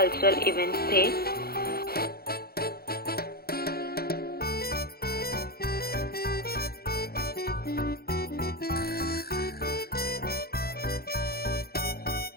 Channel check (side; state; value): right; late; 0.45 ms